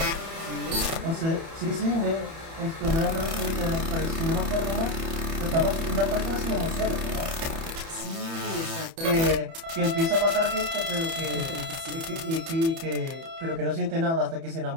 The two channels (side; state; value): left; late; 30 ms